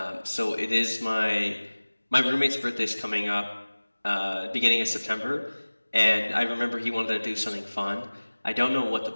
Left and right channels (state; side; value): inverted; both; correlation -1.00